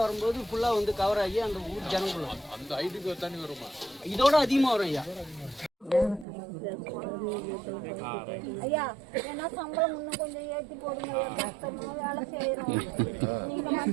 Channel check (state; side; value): drops out; left; at 6.2 s